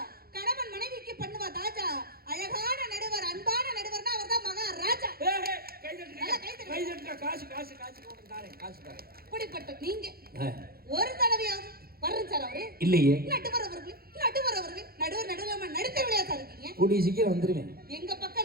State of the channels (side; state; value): left; late; 0.44 ms